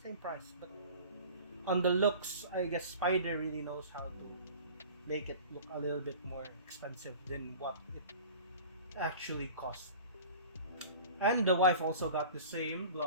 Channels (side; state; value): both; inverted; correlation -0.41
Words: price. But on the looks, I guess Spider really knows how to make it look a little bit more expensive than what it actually costs. And the wife also got the same